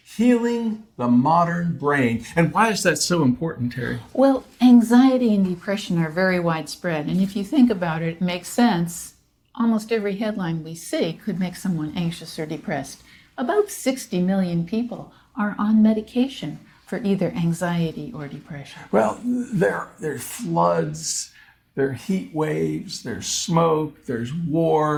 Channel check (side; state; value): both; identical; correlation 1.00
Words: Healing the Modern Brain. And why is that so important, Terry? Well, anxiety and depression are very widespread, and if you think about it, it makes sense. Almost every headline we see could make someone anxious or depressed. About 60 million people are on medication for either anxiety or depression. Well, there's floods, there are heat waves, there's smoke, there's